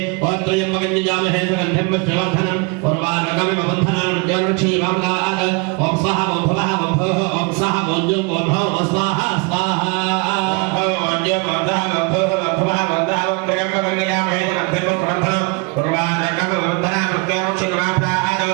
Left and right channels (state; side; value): quieter; left; 30.3 dB